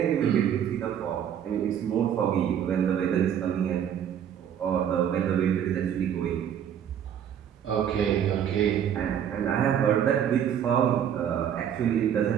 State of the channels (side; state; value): left; quieter; 9.2 dB